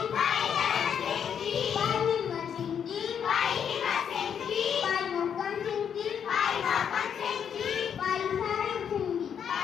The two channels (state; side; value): quieter; right; 8.0 dB